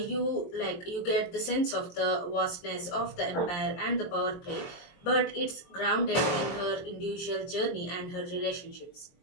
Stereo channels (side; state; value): right; late; 23 ms